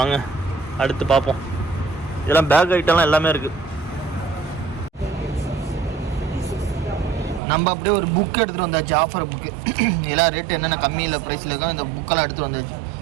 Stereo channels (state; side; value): drops out; left; at 7.4 s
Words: அடுத்து பார்ப்போம். இதெல்லாம் பேக் ஐட்டம்லாம் எல்லாமே இருக்குது. நம்ம அப்படியே ஒரு புக் எடுத்துகிட்டு வந்தாச்சு, ஆஃபர் புக்கு. இதெல்லாம் ரேட்டு என்னென்ன கம்மியில் ப்ரைஸில் இருக்கும் இந்த புக்கெல்லாம் எடுத்துகிட்டு வந்தாச்சு.